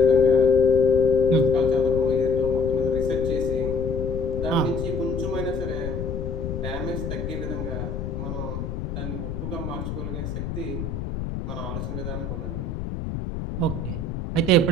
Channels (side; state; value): left; noise; rumble, 5 dB below the sound